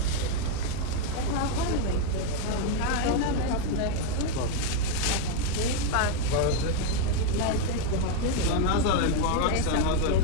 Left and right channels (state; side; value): different; both; correlation 0.01